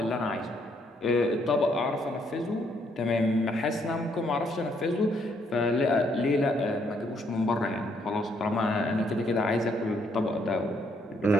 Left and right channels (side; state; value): both; normal; correlation 0.71